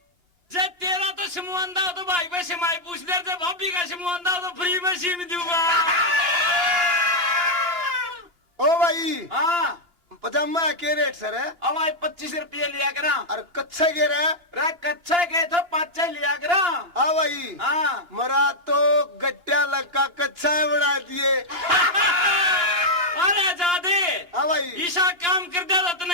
जे तेरा तो समूह आंदा हो तो भाई पे सिमाई पूछ ले, जे भाभी का समूह आंदा हो तो फ्री में सीम दूंगा। ओ भाई हाँ पजामा के रेट सर है? अब भाई 25 रुपये लिया करा। और कच्चे के रहे? रे कच्चा के तो 5 लिया करा। हाँ भाई हाँ मरा तो गट्टिया लगा कच्चा बना दिए। अरे जादे हाँ भाई ईशा काम कर दे तो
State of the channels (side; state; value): left; late; 2.9 ms